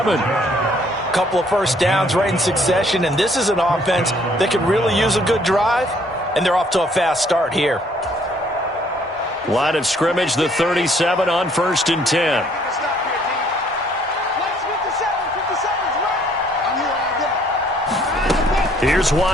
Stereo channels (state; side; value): normal; both; correlation 0.63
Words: couple of first downs right in succession, and this is an offense that can really use a good drive, and they're off to a fast start here. Line of scrimmage, the 37 on 1st and 10. Here's